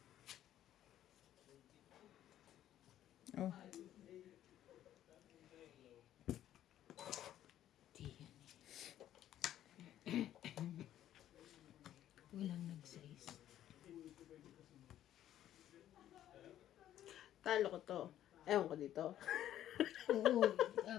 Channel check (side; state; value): right; quieter; 11.9 dB